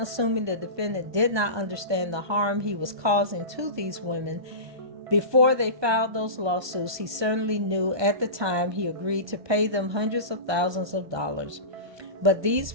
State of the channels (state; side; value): late; left; 1.2 ms